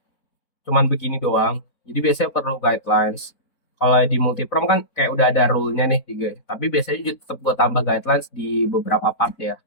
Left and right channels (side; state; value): right; late; 4.0 ms